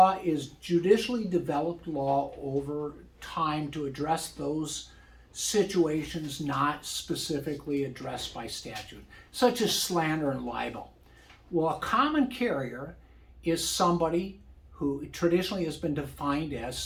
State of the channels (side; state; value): both; identical; correlation 1.00